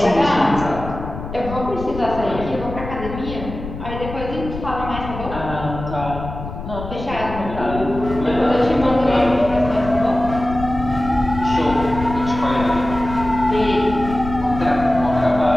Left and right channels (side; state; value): left; noise; rumble, 9 dB below the sound